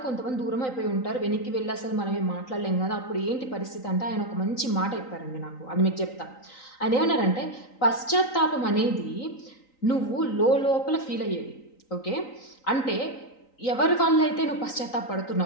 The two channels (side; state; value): right; late; 3.9 ms